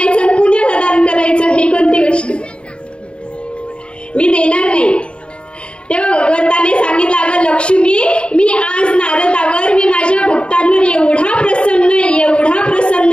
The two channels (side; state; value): right; late; 0.055 ms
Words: पुण्याला दान करायचं, हे कोणती गोष्ट? मी देणार नाही. तेव्हा भगवंताने सांगितलं, अगं लक्ष्मी, मी आज नारदावर, मी माझ्या भक्तांवर एवढा प्रसन्न